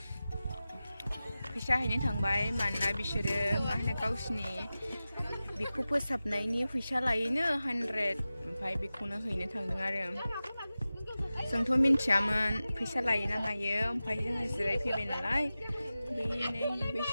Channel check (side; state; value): both; inverted; correlation -0.95